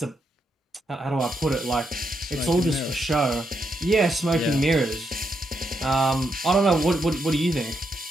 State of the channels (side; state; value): both; normal; correlation 0.81